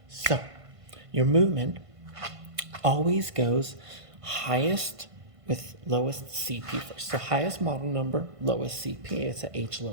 So, your movement always goes highest with lowest CP first. So highest model number, lowest CP. It's a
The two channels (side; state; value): left; late; 1.5 ms